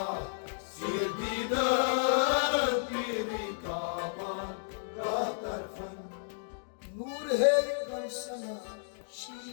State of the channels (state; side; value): silent; right; digital silence